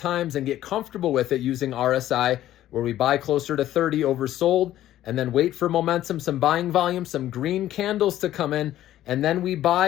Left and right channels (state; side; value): quieter; right; 13.2 dB